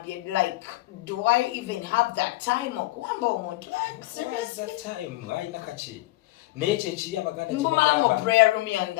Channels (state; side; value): quieter; right; 19.1 dB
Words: like do I even have that time okuwamba omuntu? Seriously, that time ayina kaki. Naye ekiri abaganda mbumala mu prayer room yange